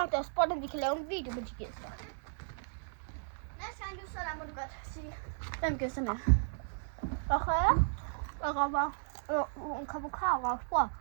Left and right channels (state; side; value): silent; left; digital silence